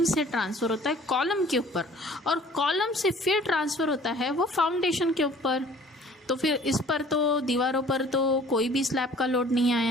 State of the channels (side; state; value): both; normal; correlation 0.51